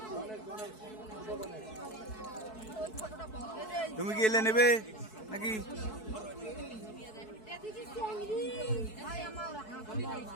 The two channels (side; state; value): right; late; 4.6 ms